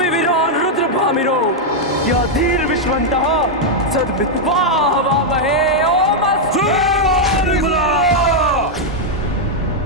रुद्र भामिरो, या धीर विश्वंतः सद्वित्वा हवामहे। ओम अस्तु।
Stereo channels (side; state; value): both; normal; correlation -0.01